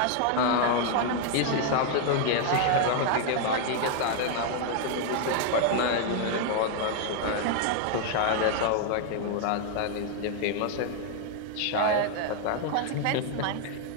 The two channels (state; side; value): different; both; correlation 0.00